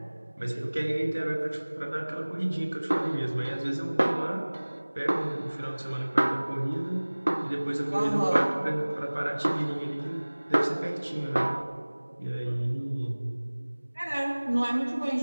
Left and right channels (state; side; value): inverted; both; correlation -1.00